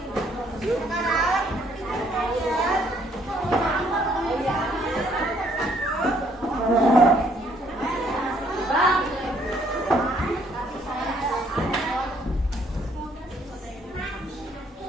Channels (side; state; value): both; normal; correlation 0.66